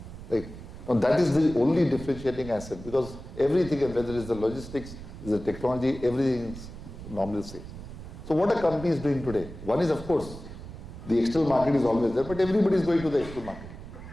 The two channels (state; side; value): noise; right; rumble, 13 dB below the sound